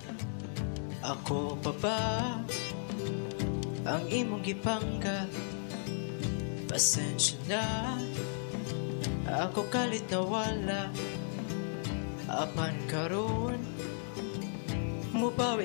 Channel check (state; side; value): silent; right; digital silence